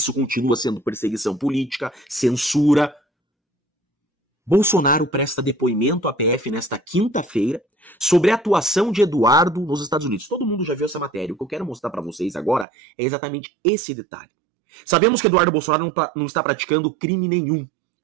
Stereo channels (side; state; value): left; drops out; at 12.7 s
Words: continua sendo perseguição política, censura. Bolsonaro presta depoimento à PF nesta quinta-feira sobre a atuação de Eduardo nos Estados Unidos. Todo mundo já viu essa matéria. O que eu quero mostrar para vocês agora é exatamente esse detalhe. Sabemos que Eduardo Bolsonaro não está praticando crime nenhum